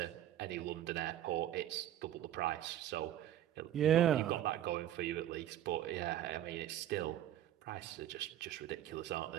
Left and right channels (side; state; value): left; quieter; 11.9 dB